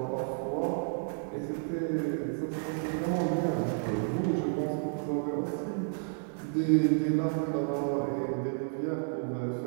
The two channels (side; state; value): left; silent; 57 dB below the other